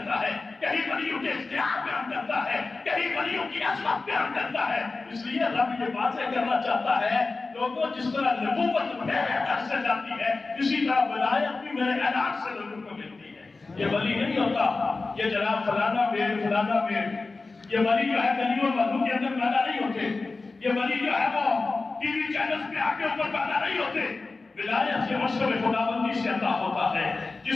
ہے، کہیں ولیوں کے اختیار بیان کرتا ہے، کہیں ولیوں کی عظمت بیان کرتا ہے۔ اس لیے رب یہ واضح کرنا چاہتا ہے لوگوں، جس طرح نبوت میرے در سے جاتی ہے اسی طرح ولایت بھی میرے اعلان سے لوگوں کو ملتی ہے۔ یہ ولی نہیں ہوتا یہ جناب فلانا پیر فلانا پیر، یہ ولی جو ہے گلیوں محلوں کے اندر پیدا نہیں ہوتے، یہ ولی جو ہے وہ ٹی وی چینلز پہ آ کے اوپر پیدا نہیں ہوتے۔ ولایت سے مشرب خداوندی سے عطا ہوتا ہے،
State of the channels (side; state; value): right; quieter; 3.7 dB